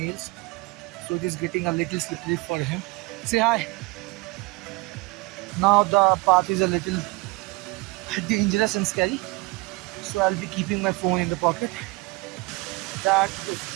nails, so it is getting a little slippery for him. Say hi. Now the path is a little dangerous and scary, so I'll be keeping my phone in the pocket. That is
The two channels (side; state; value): left; quieter; 24.4 dB